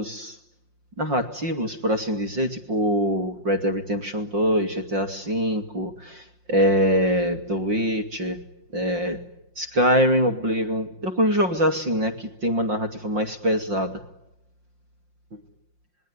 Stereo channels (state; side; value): late; left; 5.6 ms